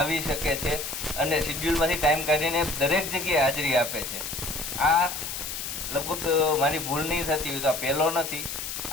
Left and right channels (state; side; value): noise; left; hiss, 6 dB below the sound